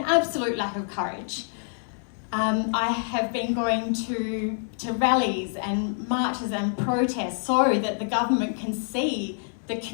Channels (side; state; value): right; silent; digital silence